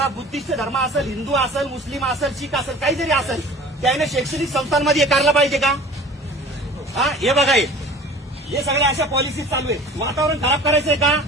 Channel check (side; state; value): both; normal; correlation 0.44